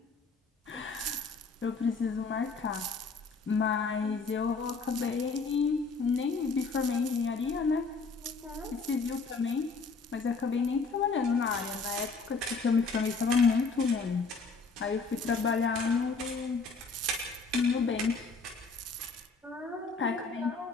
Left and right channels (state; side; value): quieter; right; 4.2 dB